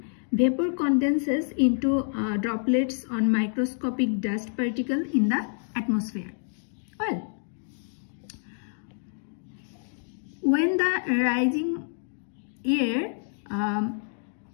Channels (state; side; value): silent; right; digital silence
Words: Vapor condenses into droplets on microscopic dust particle in the atmosphere. Well, when the rising air